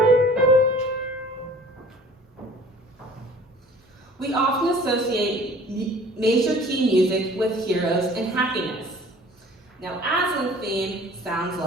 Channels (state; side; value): normal; both; correlation 0.49